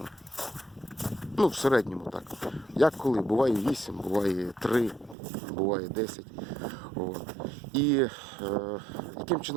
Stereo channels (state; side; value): drops out; left; at 5.2 s